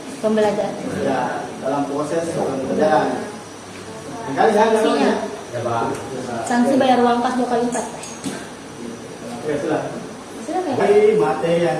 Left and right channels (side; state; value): both; identical; correlation 1.00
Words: Pembelajaran. ya, dalam proses pembelajaran. Nah, kali jangan Sanksi bayar uang pas 2 kali lipat. Oke, sudah. Sudah kan? Dari materi